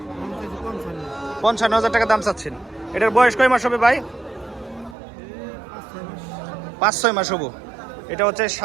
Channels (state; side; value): drops out; left; at 5.0 s